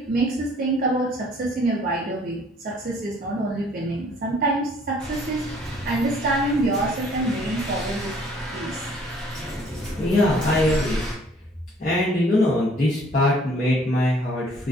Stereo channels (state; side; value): normal; both; correlation 0.58